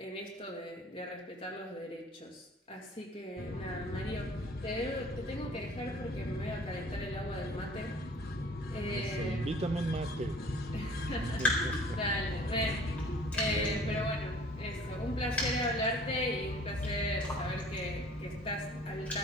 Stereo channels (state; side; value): normal; both; correlation 0.50